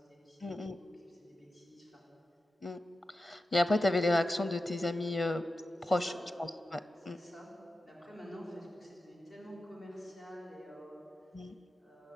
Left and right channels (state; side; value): normal; both; correlation 0.92